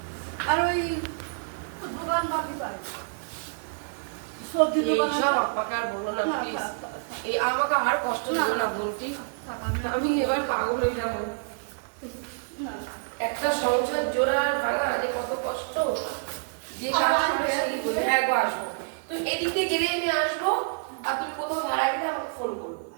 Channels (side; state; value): left; silent; 60 dB below the other